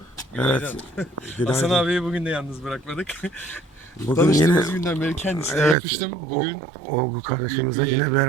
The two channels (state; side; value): drops out; left; at 5.8 s